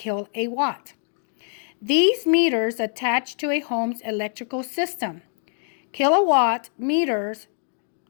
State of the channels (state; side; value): silent; right; 62 dB below the other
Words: These meters attach to a home's electrical system. Kilowatt meters